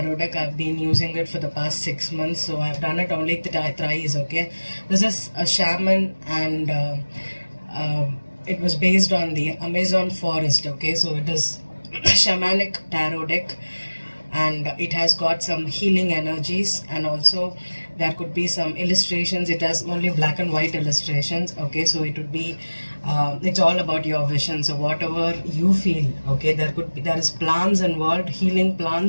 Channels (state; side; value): inverted; both; correlation -1.00